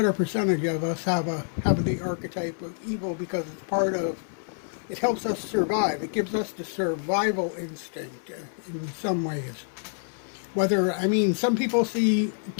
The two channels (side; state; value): right; silent; 60 dB below the other